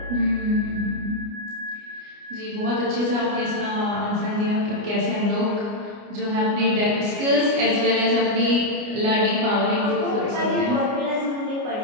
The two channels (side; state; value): left; late; 29 ms